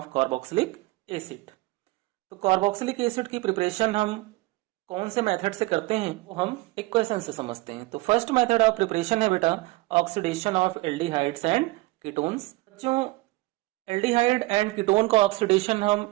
carboxylic acid. तो कार्बोक्सिलिक एसिड की प्रिपरेशन हम कौन से मेथड से करते हैं वो हम इक्वेशन से समझते हैं। तो फर्स्ट मेथड ऑफ प्रिपरेशन है बेटा oxidation of aldehydes and ketones. बच्चों, एल्डिहाइड एंड कीटोन का ऑक्सीडेशन हम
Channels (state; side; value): quieter; left; 21.4 dB